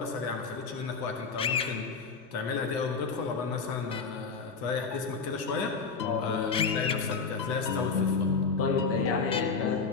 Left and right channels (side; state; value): right; quieter; 5.0 dB